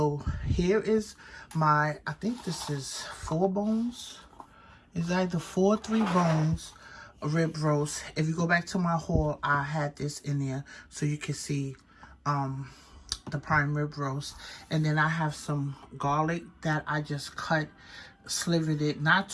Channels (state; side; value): identical; both; correlation 1.00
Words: here is I think this is 4 bones. It's either 4 or 3 bones rib roast. If you go back to my haul, I had this in there so you can see the prime rib roast. And then I have some garlic that I just slivered it, not